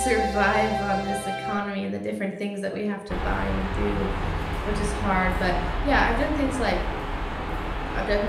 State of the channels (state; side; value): identical; both; correlation 1.00